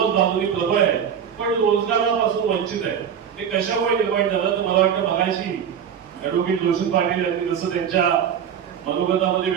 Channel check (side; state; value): left; quieter; 8.2 dB